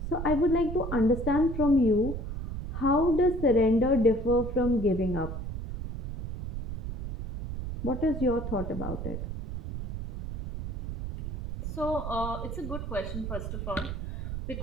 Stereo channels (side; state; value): right; noise; rumble, 6 dB below the sound